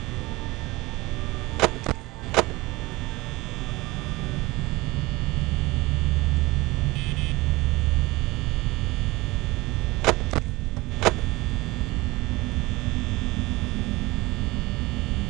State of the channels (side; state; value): left; quieter; 21.3 dB